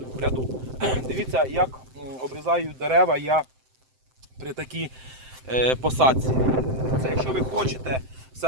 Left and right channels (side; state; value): left; late; 7.7 ms